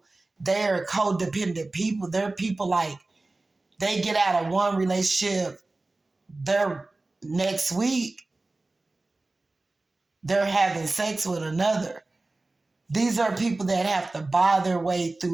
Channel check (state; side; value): quieter; left; 3.1 dB